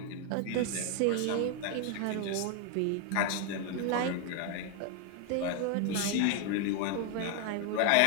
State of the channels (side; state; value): both; different; correlation 0.01